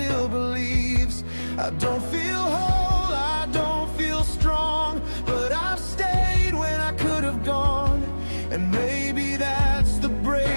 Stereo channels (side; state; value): both; inverted; correlation -1.00